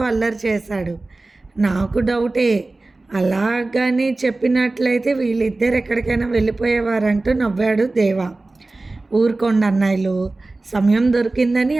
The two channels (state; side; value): quieter; left; 3.2 dB